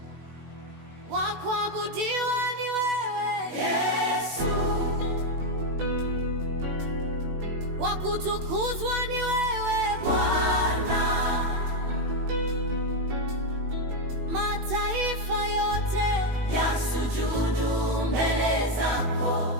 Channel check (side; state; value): left; late; 18 ms